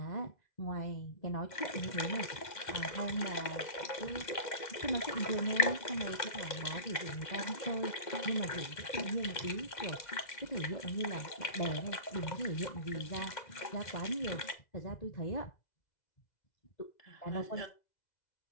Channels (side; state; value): right; late; 2.1 ms